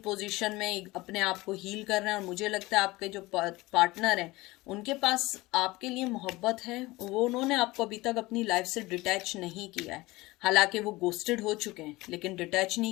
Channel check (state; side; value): quieter; right; 20.6 dB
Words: में अपने आप को हील कर रहे हैं। और मुझे लगता है आपके जो पार्टनर हैं उनके पास आपके लिए मोहब्बत है, वो उन्होंने आपको अभी तक अपनी लाइफ से डिटैच नहीं किया है। हालांकि वो गोस्टेड हो चुके हैं लेकिन डिटैच